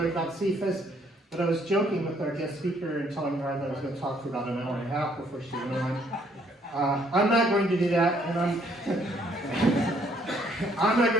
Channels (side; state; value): both; normal; correlation 0.66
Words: about CFAS. But I was joking with our guest speaker and telling her that I was going to talk for about an hour and a half before she went on. I'm not going to do that, and I'm not